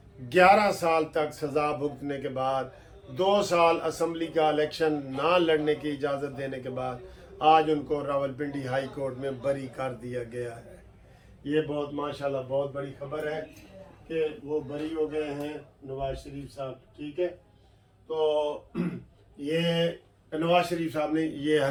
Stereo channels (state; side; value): identical; both; correlation 1.00